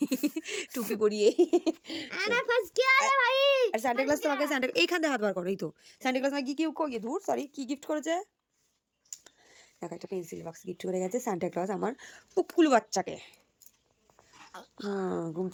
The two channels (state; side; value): identical; both; correlation 1.00